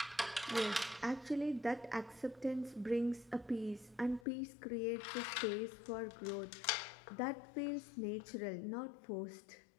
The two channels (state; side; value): drops out; right; at 4.2 s